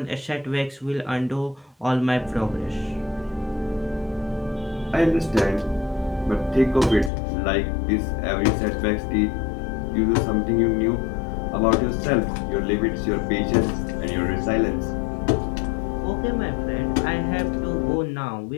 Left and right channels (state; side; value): drops out; right; at 7.1 s